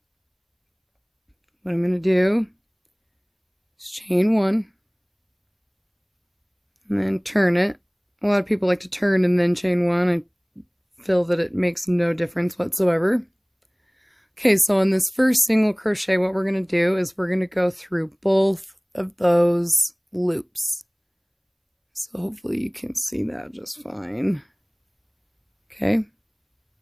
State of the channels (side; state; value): both; identical; correlation 1.00